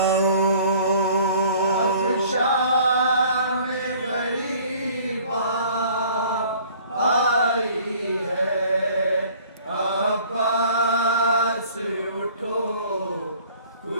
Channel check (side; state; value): both; inverted; correlation -0.52